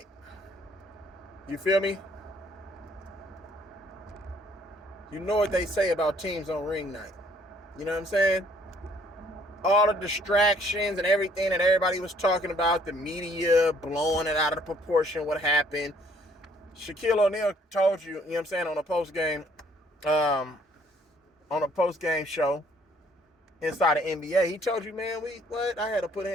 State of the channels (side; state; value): both; normal; correlation 0.62